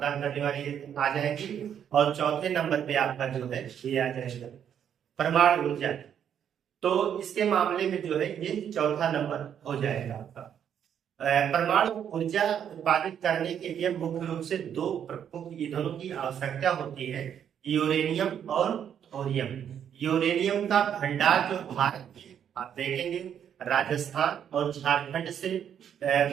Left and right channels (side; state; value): left; quieter; 8.9 dB